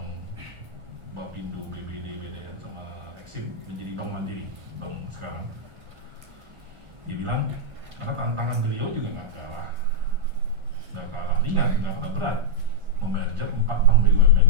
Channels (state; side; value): late; left; 1.5 ms